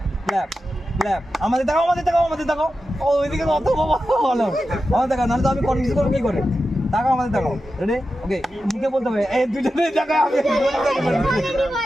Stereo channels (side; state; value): both; normal; correlation 0.91